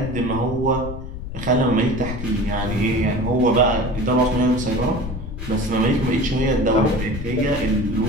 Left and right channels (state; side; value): noise; left; rumble, 8 dB below the sound